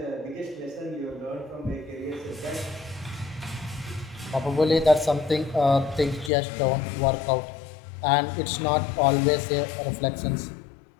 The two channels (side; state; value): right; drops out; at 6.3 s